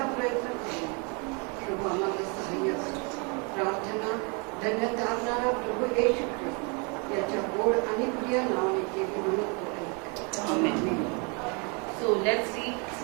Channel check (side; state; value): left; quieter; 33.6 dB